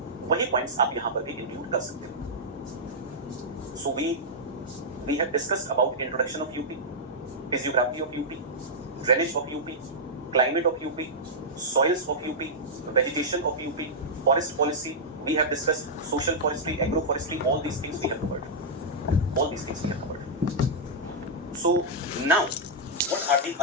वही points आप यहाँ पर भी इंक्लूड कर सकते हो. So we have discussed about introduction of UP, physiography of UP, drainage of UP, climate of UP, soils of UP, vegetation of UP, forest policy. We have discussed social forestry, agroforestry, all these things we have covered. All these things we have covered. So now, what are the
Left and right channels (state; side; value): normal; both; correlation -0.09